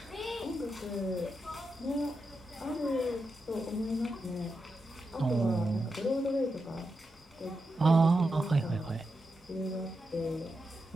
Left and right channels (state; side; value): normal; both; correlation 0.87